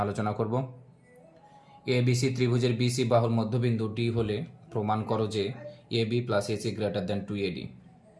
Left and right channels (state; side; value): identical; both; correlation 1.00